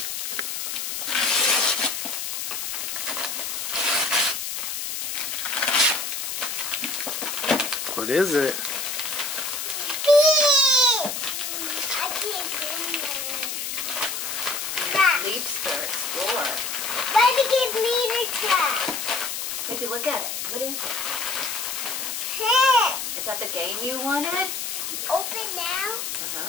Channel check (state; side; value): noise; left; hiss, 4 dB below the sound